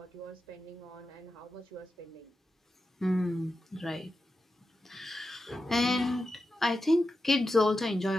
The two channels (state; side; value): normal; both; correlation 0.90